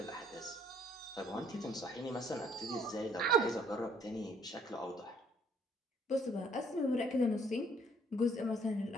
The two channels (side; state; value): both; normal; correlation 0.62